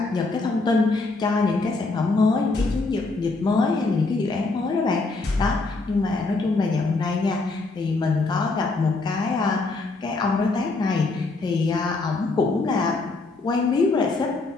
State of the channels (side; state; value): right; quieter; 3.5 dB